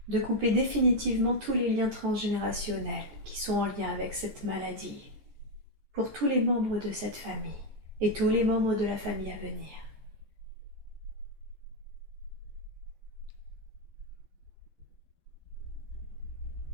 De couper définitivement tous les liens transgénérationnels qui sont en lien avec cette maladie, pour tous les membres de cette famille et tous les membres de la famille à venir.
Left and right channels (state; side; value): late; left; 15 ms